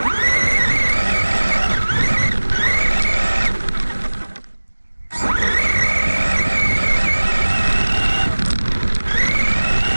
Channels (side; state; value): both; inverted; correlation -1.00